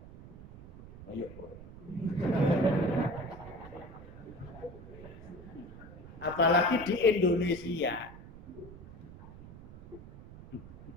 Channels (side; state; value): right; noise; rumble, 16 dB below the sound